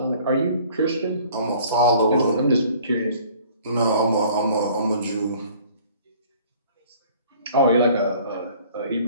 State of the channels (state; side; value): inverted; both; correlation -0.52